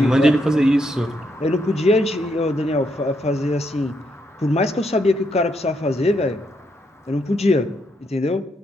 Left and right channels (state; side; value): normal; both; correlation 0.78